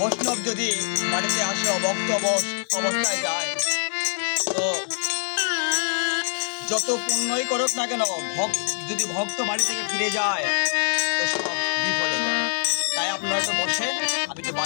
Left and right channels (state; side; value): silent; right; 62 dB below the other